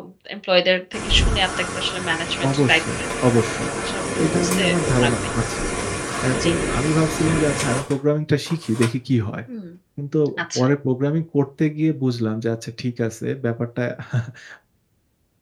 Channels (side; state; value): both; identical; correlation 1.00